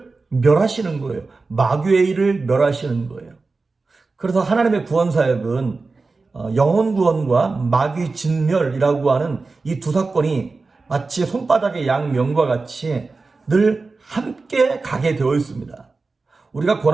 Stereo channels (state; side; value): quieter; left; 3.9 dB